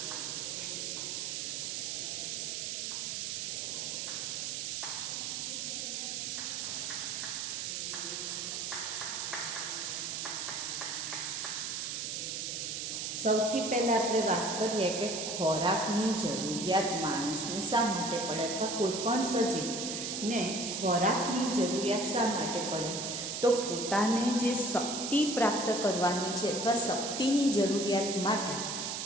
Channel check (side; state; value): right; noise; hiss, 3 dB below the sound